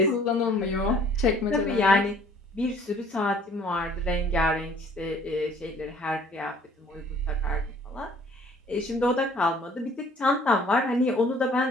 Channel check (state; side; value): normal; both; correlation 0.56